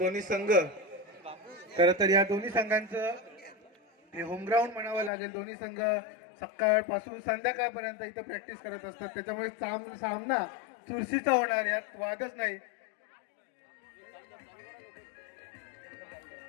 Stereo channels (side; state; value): right; drops out; at 5.1 s